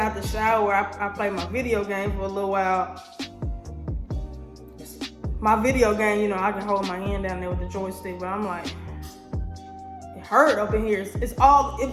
the shower, I play my video game for a little while. My video game, you know, I can hold my hand down there with the joystick, but I'm like, it hurt up in here.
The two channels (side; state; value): both; identical; correlation 1.00